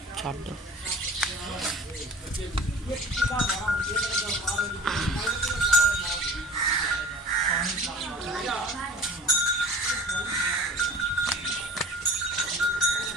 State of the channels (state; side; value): normal; both; correlation 0.42